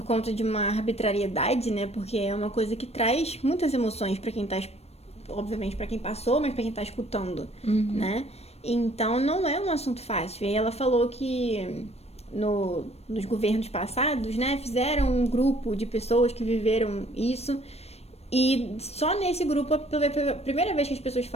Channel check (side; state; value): right; late; 0.31 ms